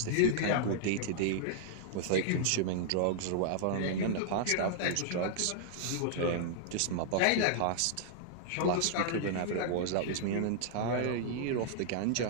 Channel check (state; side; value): different; both; correlation -0.01